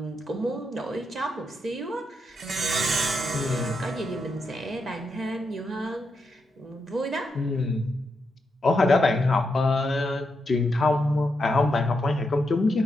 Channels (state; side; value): normal; both; correlation 0.83